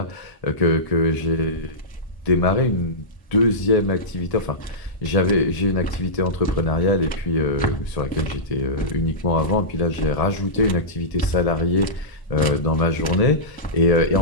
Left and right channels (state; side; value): late; right; 1.0 ms